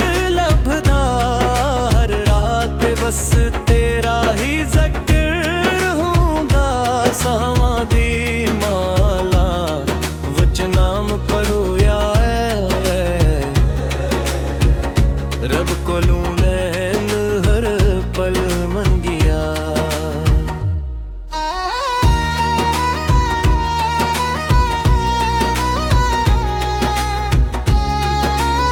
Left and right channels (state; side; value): identical; both; correlation 1.00